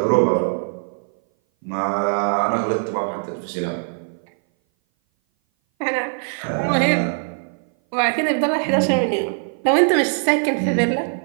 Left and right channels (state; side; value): silent; left; 58 dB below the other